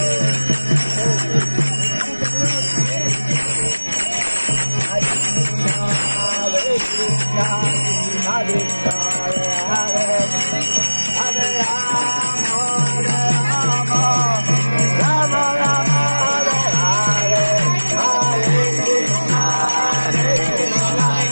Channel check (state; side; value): inverted; both; correlation -1.00